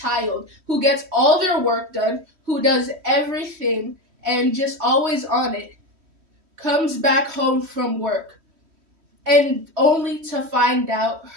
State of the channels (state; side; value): late; left; 3.1 ms